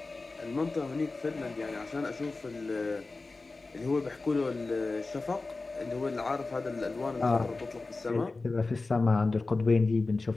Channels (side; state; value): right; quieter; 3.6 dB